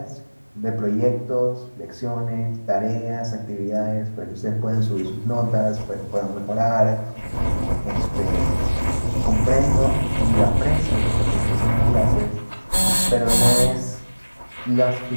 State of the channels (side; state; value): both; inverted; correlation -1.00